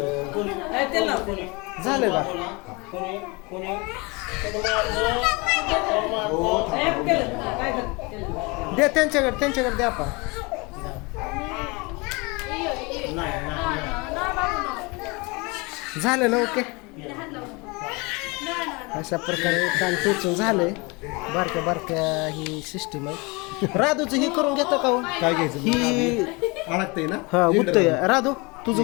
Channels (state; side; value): quieter; right; 27.4 dB